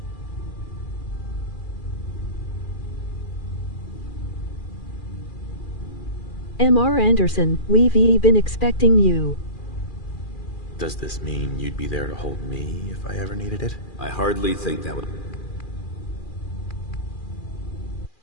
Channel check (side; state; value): right; late; 2.4 ms